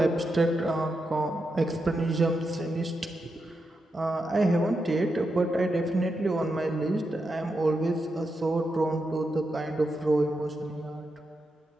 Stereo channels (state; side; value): normal; both; correlation 0.86